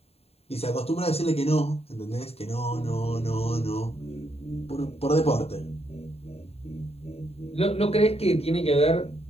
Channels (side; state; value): right; late; 0.29 ms